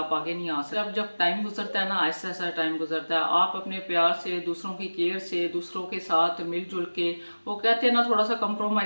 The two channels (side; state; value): both; inverted; correlation -1.00